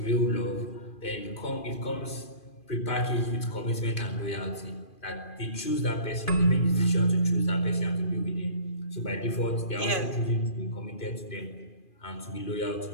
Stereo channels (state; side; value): late; right; 2.4 ms